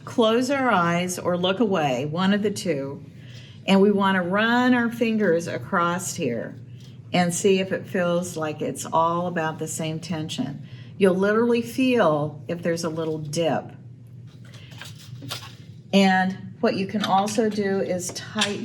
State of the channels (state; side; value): identical; both; correlation 1.00